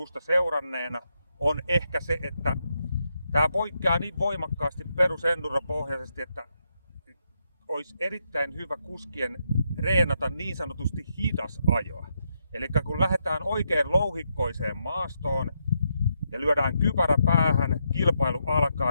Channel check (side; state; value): both; inverted; correlation -0.81